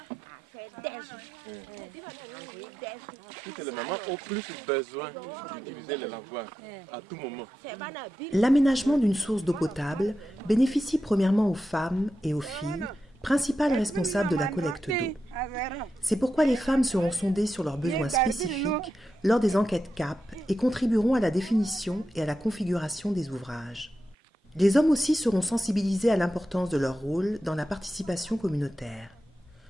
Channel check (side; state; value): both; normal; correlation 0.89